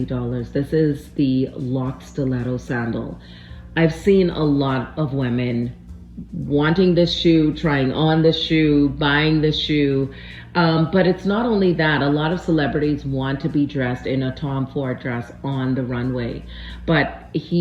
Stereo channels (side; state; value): both; identical; correlation 1.00